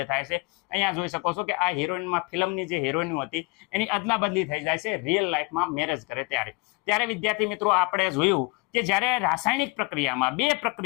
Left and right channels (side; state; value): right; quieter; 27.1 dB